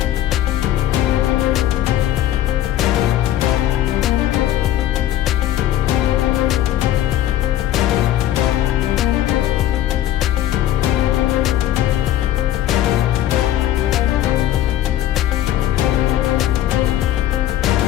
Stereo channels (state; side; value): quieter; right; 12.7 dB